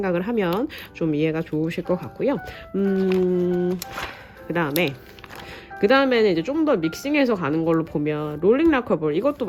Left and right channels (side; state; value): both; identical; correlation 1.00